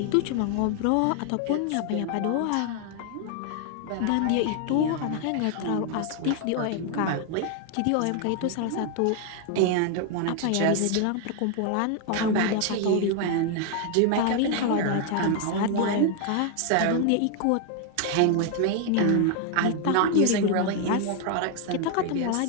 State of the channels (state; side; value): different; both; correlation 0.00